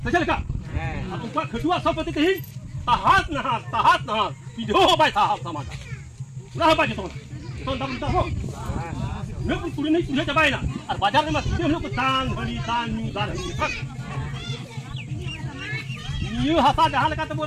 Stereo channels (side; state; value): both; identical; correlation 1.00